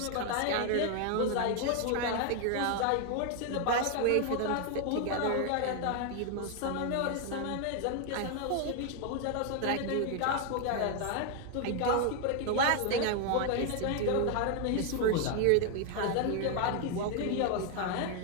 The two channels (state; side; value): different; both; correlation 0.01